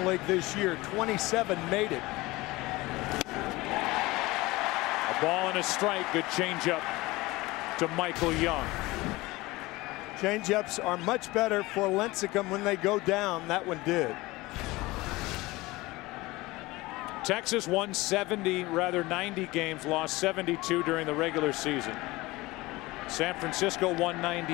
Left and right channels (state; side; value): quieter; right; 20.7 dB